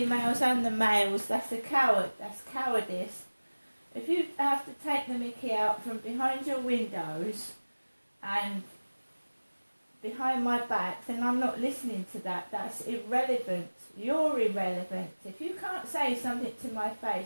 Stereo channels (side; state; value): both; inverted; correlation -1.00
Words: and the males. That's a coward. That's cowardice. If you have to take the Mickey out from behind your windows and behind my back, then I'm not listening to that. That's irrelevant. You're irrelevant. If you can't say something to my